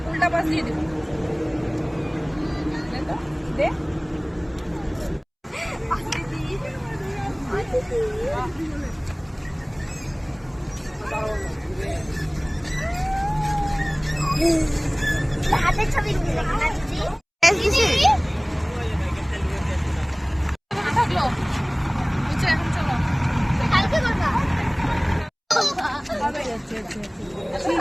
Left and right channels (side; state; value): both; identical; correlation 1.00